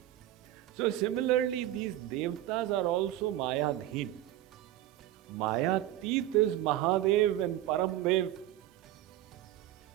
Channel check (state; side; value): quieter; left; 13.7 dB